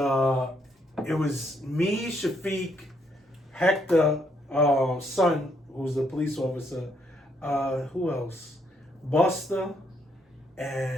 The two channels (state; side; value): normal; both; correlation 0.73